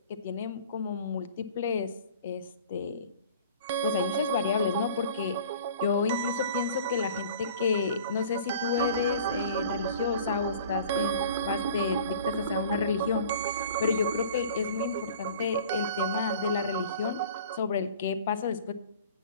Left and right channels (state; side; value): inverted; both; correlation -0.44